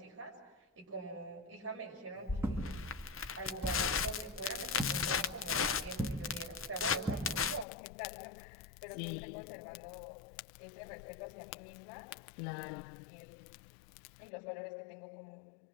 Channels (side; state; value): right; drops out; at 7.7 s